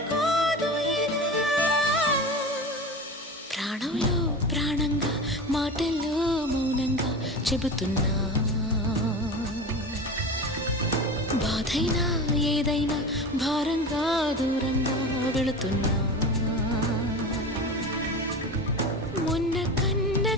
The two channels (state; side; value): normal; both; correlation 0.29